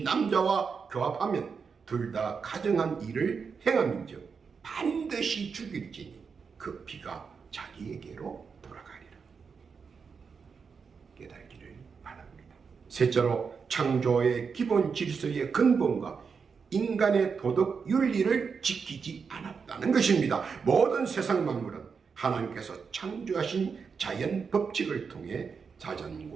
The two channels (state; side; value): quieter; left; 5.7 dB